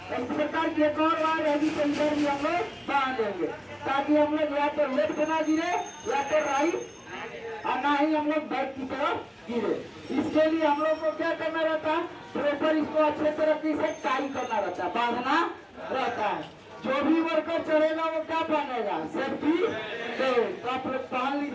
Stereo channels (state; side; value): identical; both; correlation 1.00